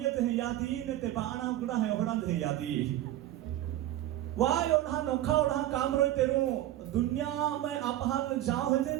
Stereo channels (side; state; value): left; quieter; 13.7 dB